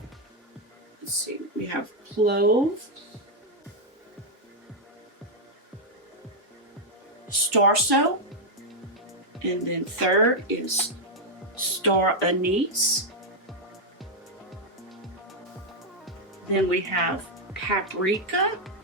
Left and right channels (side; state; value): both; normal; correlation -0.01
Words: Let's see, we have Clove, Starso, and then third is Star Anise. Then we have Paprika,